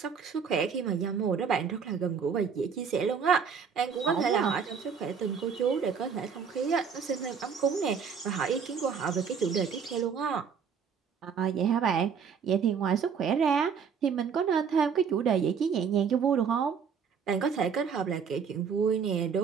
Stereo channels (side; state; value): left; quieter; 6.5 dB